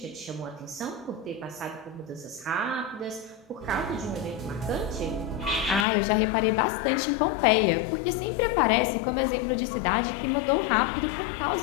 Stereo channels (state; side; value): drops out; right; at 5.9 s